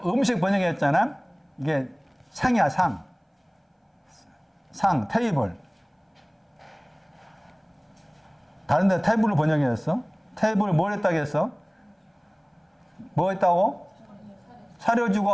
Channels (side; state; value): both; identical; correlation 1.00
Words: 번역했잖아. 이게 상이야, 상, 테이블. 다른 데 테이블을 번역했어. 테이블을 뭘 했다고 했어? 뭐 했다고? 차려주고,